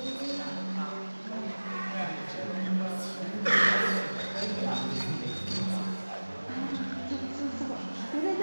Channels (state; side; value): inverted; both; correlation -1.00